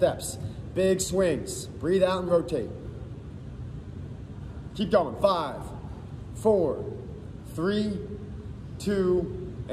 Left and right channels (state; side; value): identical; both; correlation 1.00